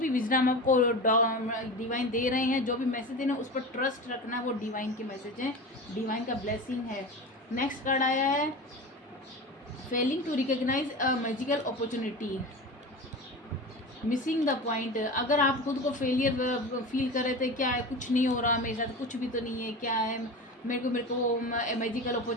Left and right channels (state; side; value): normal; both; correlation 0.29